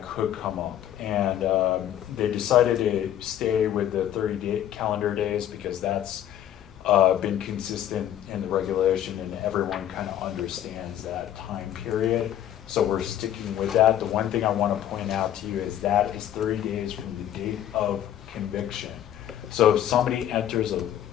could come up. And they decided to stay with the 30 calendar days because that's been consistent in the regulation and everyone kind of understands that time period. So we're sticking with that. The one thing I want to point out to you is that is 30 days from the date of conviction. So if somebody enters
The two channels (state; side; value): quieter; right; 11.2 dB